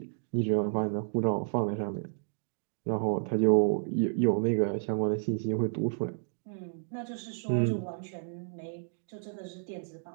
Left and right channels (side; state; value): left; silent; digital silence